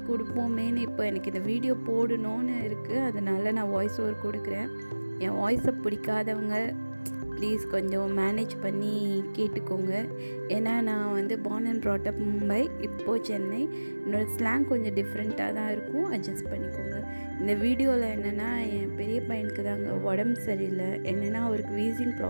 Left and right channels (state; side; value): inverted; both; correlation -1.00